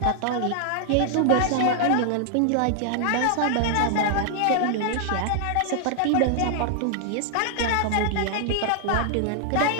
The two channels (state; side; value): different; both; correlation 0.00